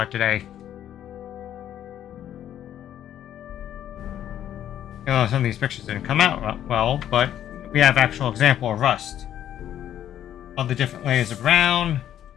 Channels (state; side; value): quieter; right; 11.0 dB